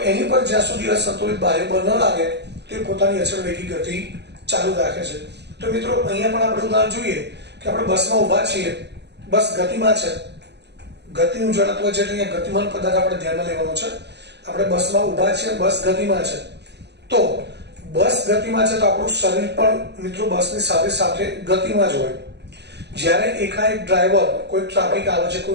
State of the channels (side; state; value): left; late; 0.49 ms